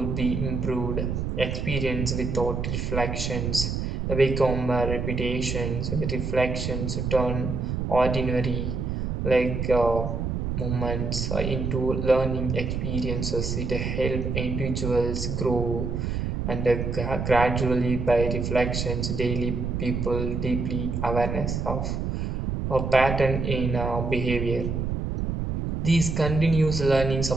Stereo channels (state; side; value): noise; right; rumble, 2 dB below the sound